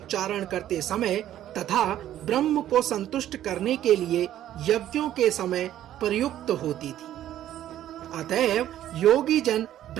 करते समय तथा ब्रह्म को संतुष्ट करने के लिए यज्ञों के समय प्रयुक्त होती थी। अतएव योगी जन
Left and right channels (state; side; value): quieter; left; 12.1 dB